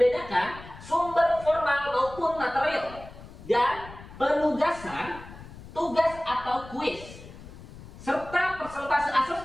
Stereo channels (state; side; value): noise; left; rumble, 16 dB below the sound